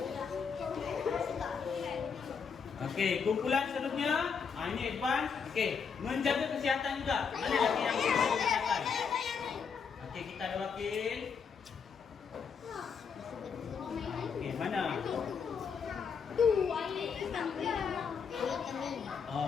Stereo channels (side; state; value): right; quieter; 6.2 dB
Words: Okey, kumpulan seterusnya. Ini advance. Okey, menjaga kesihatan juga. Mana lagi yang menjaga kesihatan? Okey, kita ada wakil. Okey, mana?